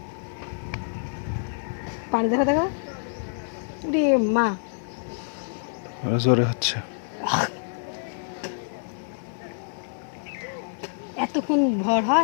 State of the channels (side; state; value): right; silent; digital silence